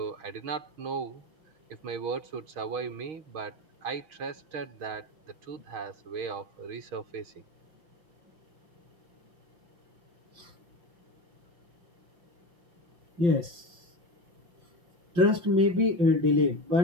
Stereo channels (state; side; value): late; left; 5.8 ms